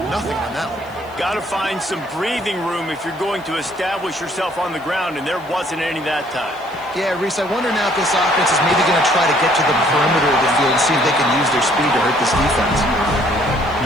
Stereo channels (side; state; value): left; noise; hiss, 28 dB below the sound